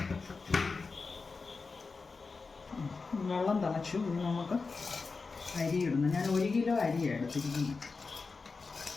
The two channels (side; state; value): right; quieter; 4.4 dB